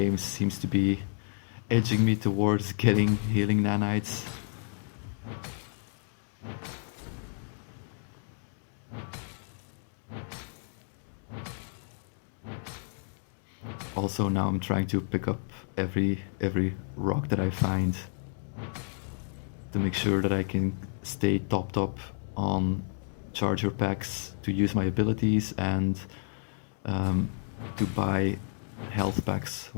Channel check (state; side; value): silent; right; digital silence